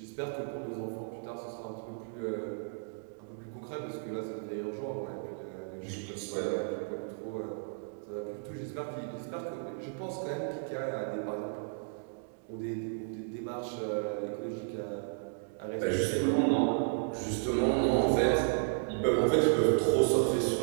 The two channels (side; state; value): left; silent; digital silence